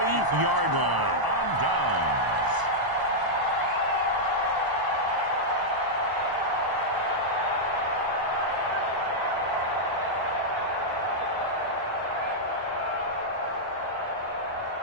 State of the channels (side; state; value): left; late; 1.0 ms